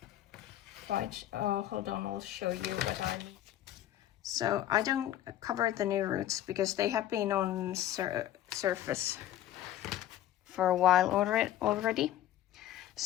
quite, hold on, I'll show you what I mean. So I don't cover the new roots because they have been on surface for a while already.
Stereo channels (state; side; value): quieter; right; 12.5 dB